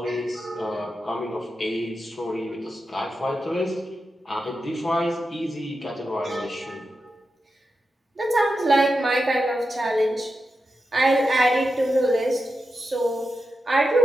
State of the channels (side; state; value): both; normal; correlation 0.89